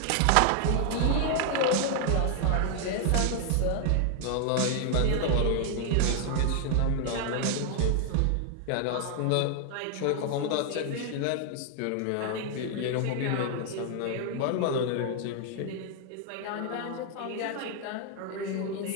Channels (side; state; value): both; different; correlation 0.00